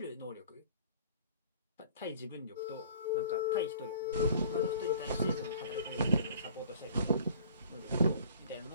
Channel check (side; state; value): both; inverted; correlation -0.50